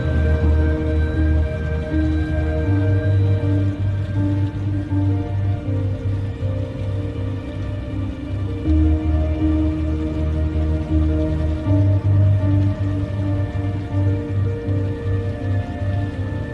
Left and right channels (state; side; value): identical; both; correlation 1.00